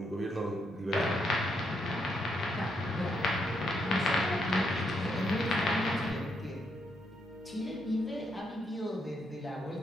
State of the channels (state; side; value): normal; both; correlation 0.77